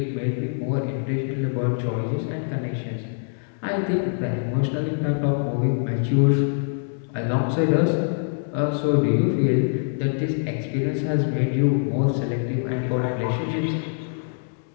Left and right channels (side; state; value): right; silent; 62 dB below the other